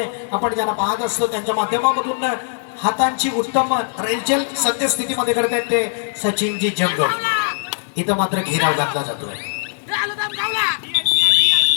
आपण ज्यांना पाहत असतो त्यांच्या माध्यमामधून हातांची उत्तम रेलचेल सद्यस्थितीमध्ये करतात ते सचिनजी जंगल. इथं मात्र घेराव घातला जातोय.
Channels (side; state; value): right; silent; digital silence